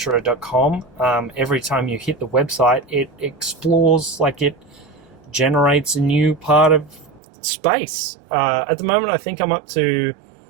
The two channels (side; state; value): left; drops out; at 7.2 s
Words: Every time you hit the website, it explores, it generates a new part of space. At the moment, I think I'm up to